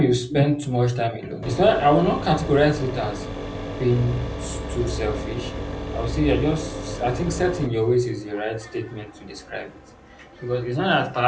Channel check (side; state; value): both; identical; correlation 1.00